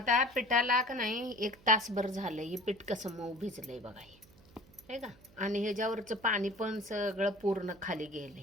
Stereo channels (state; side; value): noise; right; hum, 26 dB below the sound